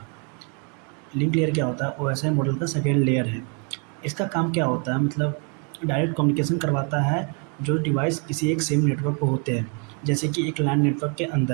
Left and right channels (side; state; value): left; quieter; 37.5 dB